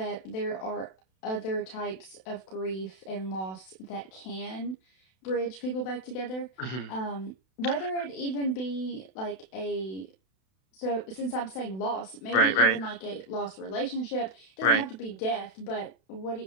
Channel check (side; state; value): right; late; 32 ms